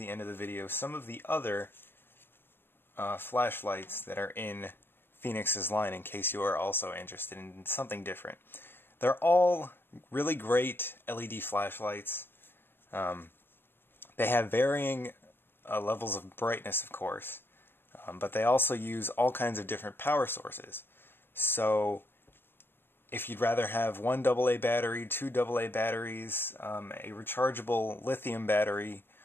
end of the video some of the other flashlights that are in Fenix's line in case you are also interested in something different. They're all really great LED flashlights. They have varying levels of brightness, of course, but they also use all kinds of different power sources. So if you'd rather have one AA battery, two AA batteries, a rechargeable lithium battery,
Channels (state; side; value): late; right; 0.10 ms